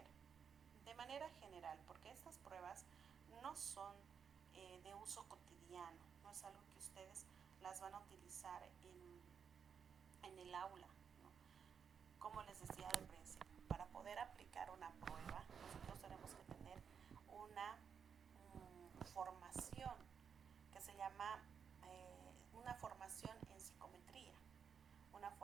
de manera general, porque estas pruebas no son de uso cotidiano, no es algo que ustedes las van a utilizar en el aula, ¿no? Como les decía al principio, para poder aplicar una prueba, nosotros tenemos que tener una formación que se llama una formación en psicometría, una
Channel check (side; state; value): left; quieter; 7.0 dB